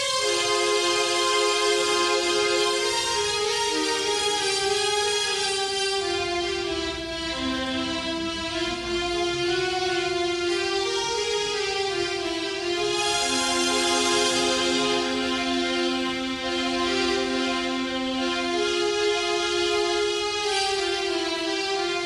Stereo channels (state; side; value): identical; both; correlation 1.00